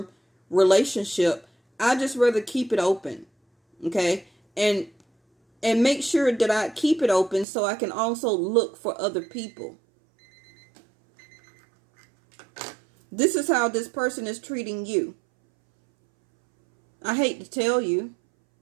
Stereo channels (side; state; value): left; drops out; at 7.5 s